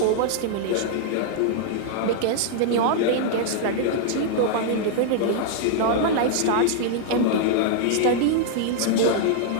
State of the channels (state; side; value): different; both; correlation -0.01